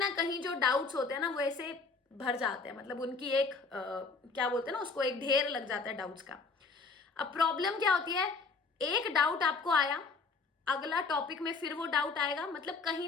कहीं जो डाउट्स होते हैं ना वो ऐसे भर जाते हैं, मतलब उनकी एक क्या बोलते हैं ना उसको, एक ढेर लग जाता है डाउट्स का। अब प्रॉब्लम क्या होती है, एक डाउट आपको आया, अगला टॉपिक में फिर वो डाउट आएगा, मतलब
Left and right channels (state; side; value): quieter; right; 4.3 dB